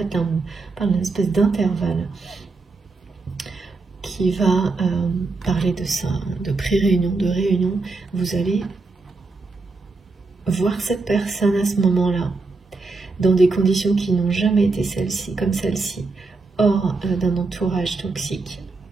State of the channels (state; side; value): quieter; left; 3.8 dB